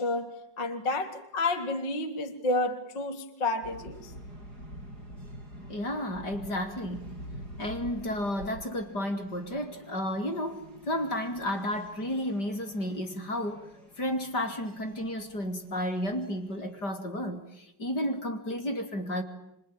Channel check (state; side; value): late; right; 5.0 ms